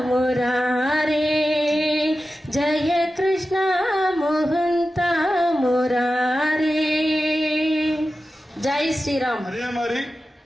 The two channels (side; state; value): both; normal; correlation 0.93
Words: मुरारे जय कृष्ण मोहंत मुरारे जय श्री राम. அதே மாதிரி